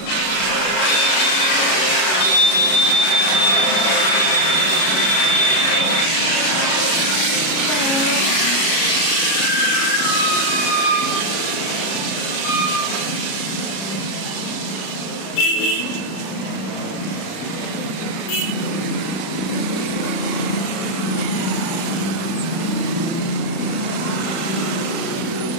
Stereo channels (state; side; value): late; right; 37 ms